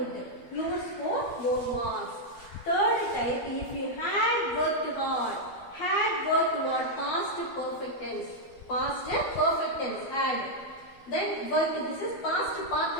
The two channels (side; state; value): right; late; 12 ms